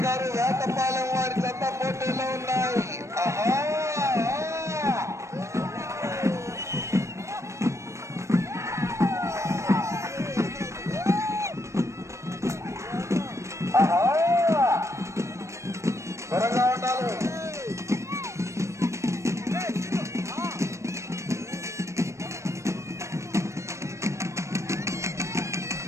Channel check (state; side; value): late; left; 0.14 ms